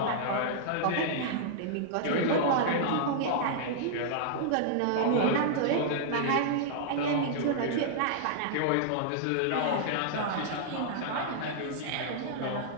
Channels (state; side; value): different; both; correlation -0.01